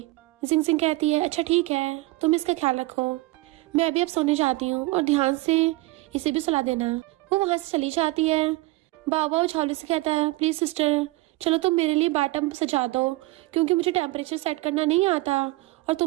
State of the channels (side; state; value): left; quieter; 20.4 dB